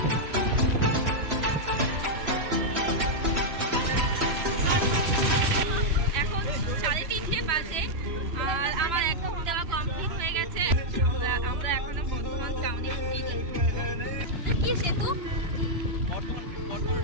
এখন 3:30 বাজে, আর আমার এখন দেওয়া কমপ্লিট হয়ে গেছে। আমরা এখনো বর্ধমান টাউনে ঢুকিনি। কি সেতু?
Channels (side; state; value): left; late; 3.0 ms